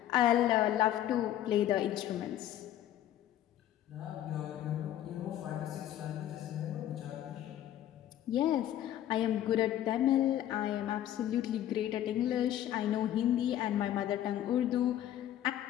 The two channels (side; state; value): right; quieter; 12.1 dB